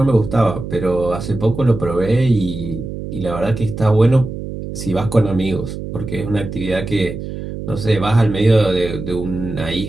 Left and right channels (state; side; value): noise; right; hum, 8 dB below the sound